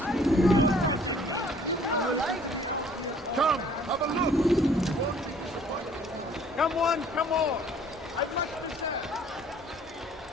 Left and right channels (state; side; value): normal; both; correlation 0.57